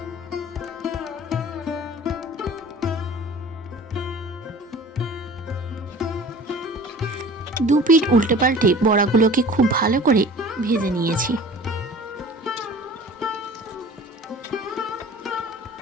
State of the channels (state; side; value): normal; both; correlation 0.44